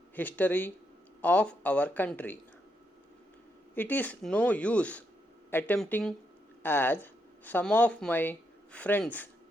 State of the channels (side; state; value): both; normal; correlation 0.80